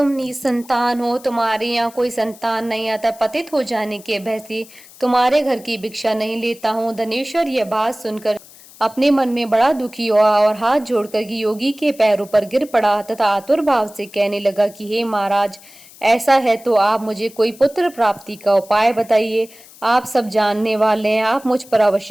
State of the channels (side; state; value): left; noise; hiss, 22 dB below the sound